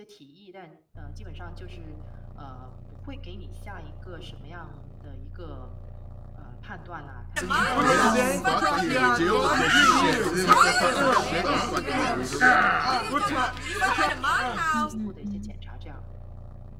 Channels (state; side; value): identical; both; correlation 1.00